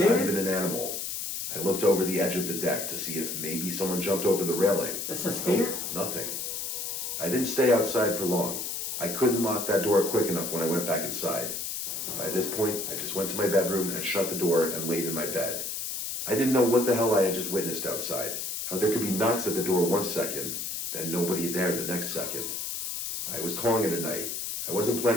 Not even an animal. I looked over the edge of the deck to see if maybe someone jumped over the railing. It's a spirit? Nothing. I didn't stay outside for long. I couldn't lock that door quick enough when I went back inside. By this point, I just went to my bedroom and shut the door and laid in my bed. I didn't know what the hell I had just witnessed outside. How there could be knocks at the door 1 second, then nobody there the next second. I was calling it a night. I wasn't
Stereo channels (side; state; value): left; noise; hiss, 4 dB below the sound